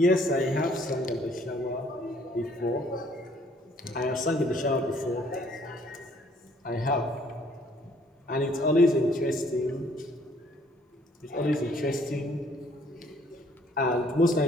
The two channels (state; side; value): normal; both; correlation 0.62